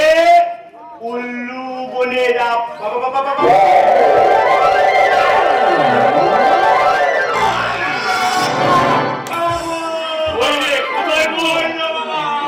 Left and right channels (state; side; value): identical; both; correlation 1.00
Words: উল্লু বলে যাব। বাবা বাবা বাবা